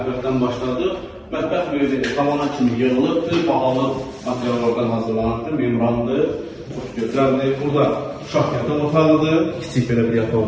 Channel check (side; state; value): both; identical; correlation 1.00